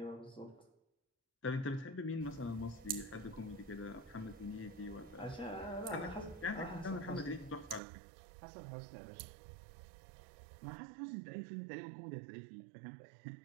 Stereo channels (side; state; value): left; drops out; at 7.8 s